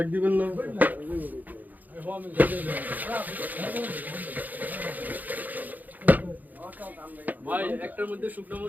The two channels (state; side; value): late; left; 0.082 ms